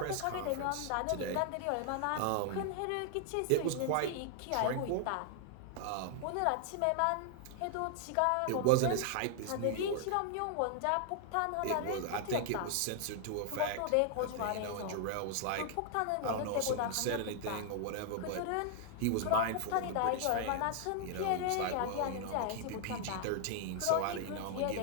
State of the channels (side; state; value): both; different; correlation 0.00